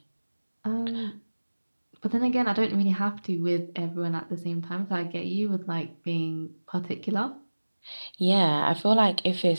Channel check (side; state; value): both; inverted; correlation -1.00